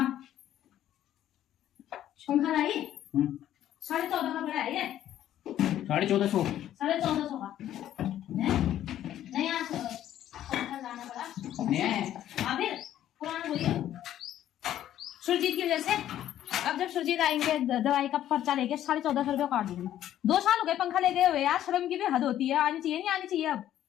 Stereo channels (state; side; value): quieter; right; 11.9 dB